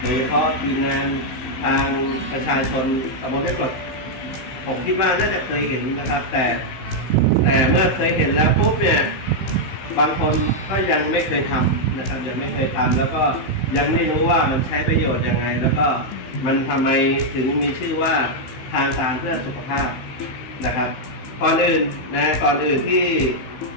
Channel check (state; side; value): late; right; 16 ms